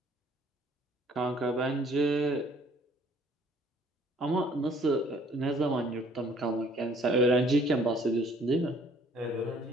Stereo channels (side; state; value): both; normal; correlation 0.58